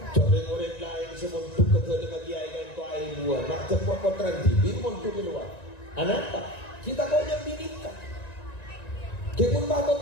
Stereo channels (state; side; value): late; right; 1.9 ms